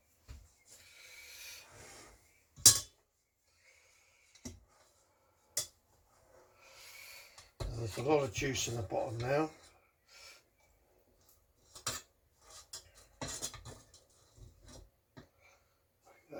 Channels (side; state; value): both; identical; correlation 1.00